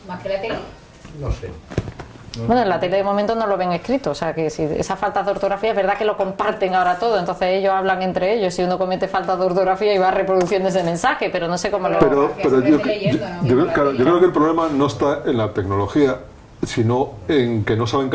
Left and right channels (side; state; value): both; identical; correlation 1.00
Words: Más que la tele. No sé. Bueno, en la tele de momento no lo ven escrito, o sea que si esa falta de ortografía es verdad que lo comparten ahora todo, entonces ellos hablan entre ellos, si uno comete falta de ortografía y va reproduciendo ese mensaje, pero no sé cómo lo... Pero se mete leyendo, ¿no? claro, yo creo que el problema no está en la tecnología, sino en que no saben